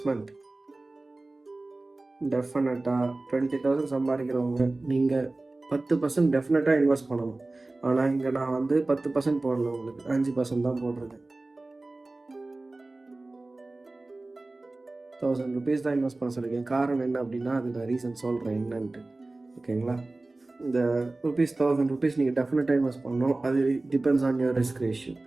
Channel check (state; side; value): quieter; left; 3.0 dB